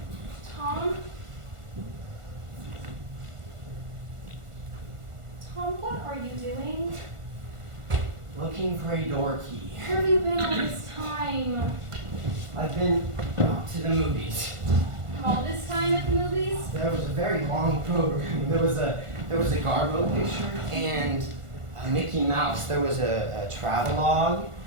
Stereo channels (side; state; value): left; late; 1.5 ms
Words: Tom? Tom, what are you doing? Looking for a door key. Where have you been all this time? I've been to the movies. All this time at the movies? There was a very long program. There was a Garbo picture and a Mickey Mouse. There was a travelogue